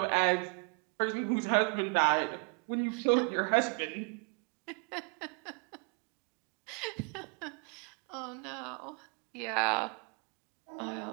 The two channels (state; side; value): quieter; left; 38.3 dB